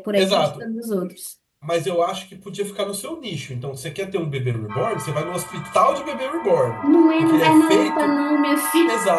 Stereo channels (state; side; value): identical; both; correlation 1.00